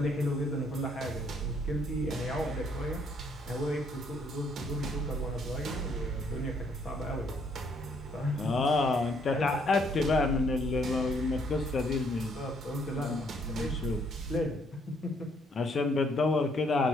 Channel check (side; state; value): both; normal; correlation 0.68